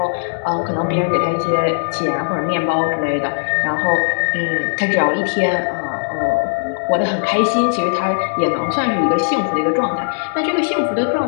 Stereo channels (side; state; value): right; silent; digital silence